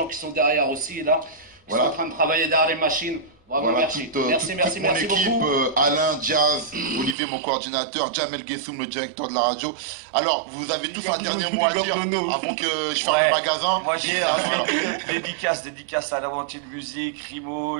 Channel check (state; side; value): drops out; left; at 7.2 s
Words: qui sont derrière aussi là. Qui sont en train de travailler derrière les machines. Bravo, voilà, merci. Merci mon équipe, beaucoup. Alain, Jazz, Olivier, mon coordinateur, Jamel Gessoum, le directeur de la radio. Alors, vous avez tous un dernier mot à dire avant que je ferme le magasin. Moi, j'ai dédicace à l'Aventure de Musique, Rimo,